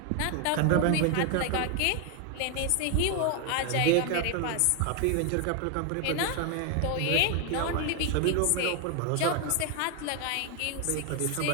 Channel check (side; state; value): both; different; correlation 0.01